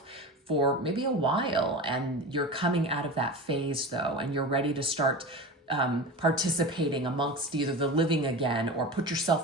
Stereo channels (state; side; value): normal; both; correlation 0.28